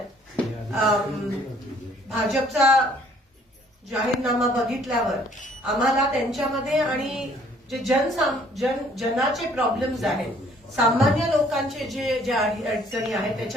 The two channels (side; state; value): both; normal; correlation 0.60